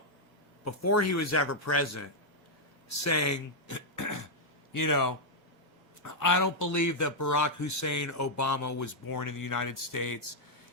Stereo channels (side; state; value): both; normal; correlation -0.03